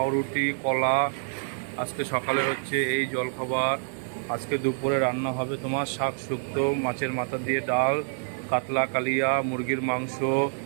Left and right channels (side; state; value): left; silent; 57 dB below the other